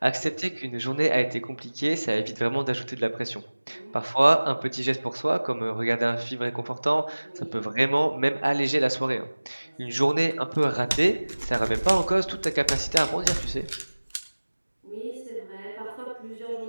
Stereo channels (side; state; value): both; inverted; correlation -1.00